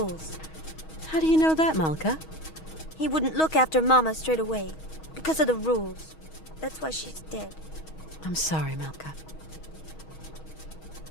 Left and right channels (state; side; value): late; right; 6.3 ms